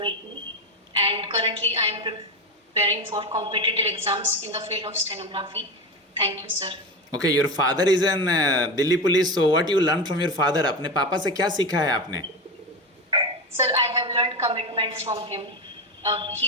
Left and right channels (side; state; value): both; normal; correlation 0.19